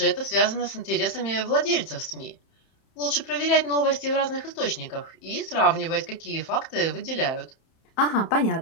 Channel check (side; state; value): right; late; 31 ms